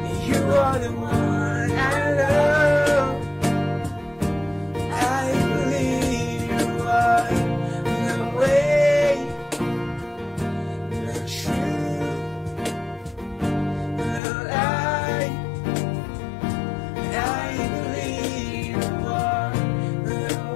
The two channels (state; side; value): drops out; right; at 14.2 s